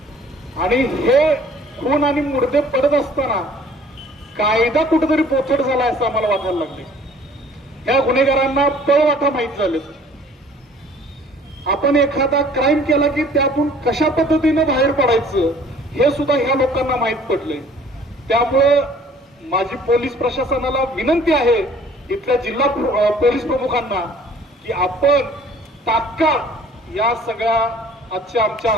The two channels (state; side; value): normal; both; correlation 0.53